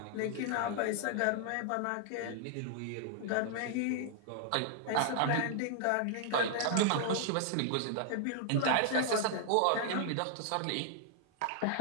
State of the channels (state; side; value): different; both; correlation -0.01